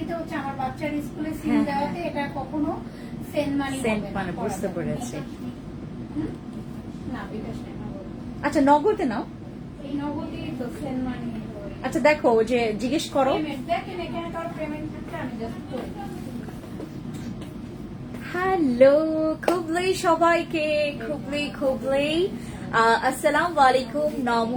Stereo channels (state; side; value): identical; both; correlation 1.00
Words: হচ্ছে আমার বাচ্চার স্কুলে সিম দেওয়াতে এটা কখনো সেন্ড মানি সেন্ড মানে বুঝতে পেরেছি। না বিকাশ না। আচ্ছা নগদে নাও। এই নগদই তো সেন্ড মানি। আচ্ছা দেখো যে জিজ্ঞেস করো। দেখেন এখানে কার পেমেন্ট থাকছে আমি জাস্ট করি। হ্যালো খুবলি সবাইকে, খুবলি আসসালামু আলাইকুম,